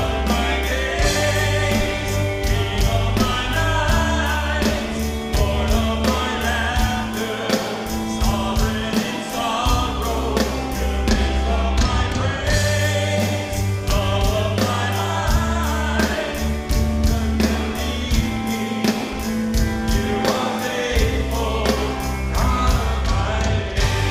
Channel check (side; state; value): both; identical; correlation 1.00